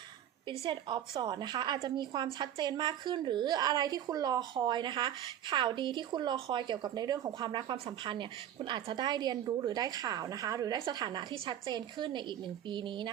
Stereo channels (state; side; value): quieter; left; 10.8 dB